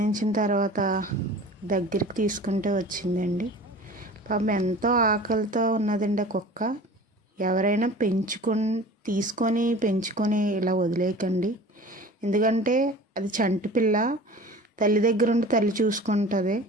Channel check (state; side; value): normal; both; correlation 0.41